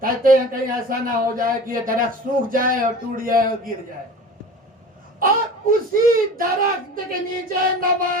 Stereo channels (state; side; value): normal; both; correlation 0.37